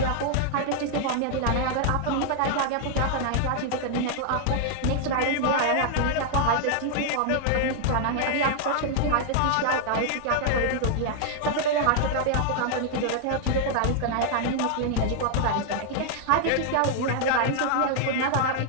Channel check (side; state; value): both; different; correlation -0.01